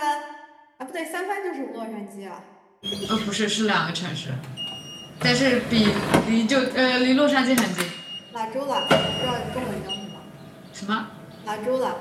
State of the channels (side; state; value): both; identical; correlation 1.00